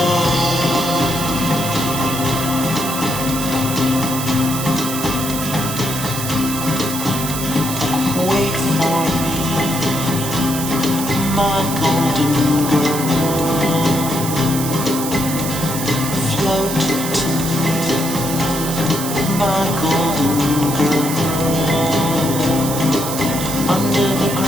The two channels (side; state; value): right; noise; hiss, 6 dB below the sound